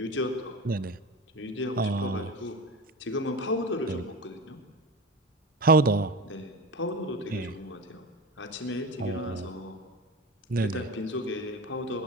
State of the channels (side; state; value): both; normal; correlation 0.28